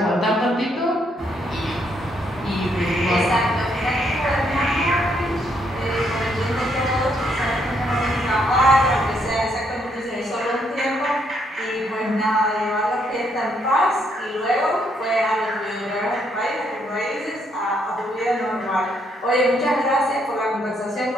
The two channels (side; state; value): both; normal; correlation 0.73